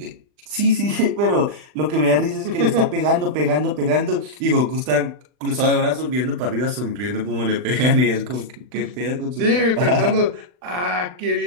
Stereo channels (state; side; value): late; left; 39 ms